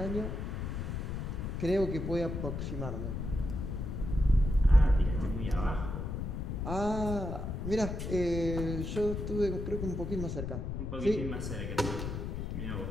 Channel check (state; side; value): noise; left; rumble, 4 dB below the sound